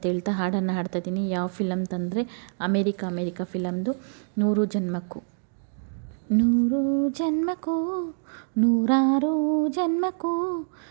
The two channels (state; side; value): silent; left; digital silence